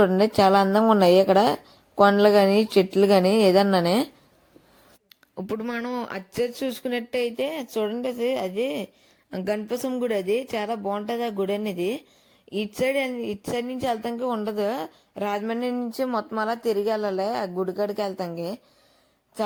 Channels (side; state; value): both; identical; correlation 1.00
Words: చాలా అందంగా ఉన్నాయి. ఇక్కడ కొండలు కానీ చెట్లు కానీ ఏదన్నానే. ఇప్పుడు మనం అచ్చే చూసుకున్నట్టయితే చూడండి, అది గణపసం గుడి. అది చాలా బాగుంటుంది ఆ గుడి అనేది. ఇటు సైడ్ నుంచి వెళ్తానికి ఉండదు. రాజమండ్రి నుంచి మొత్తం అలా తిరిగి వెళ్ళాలి ఆ గుడి కాడికి వెళ్తానికి.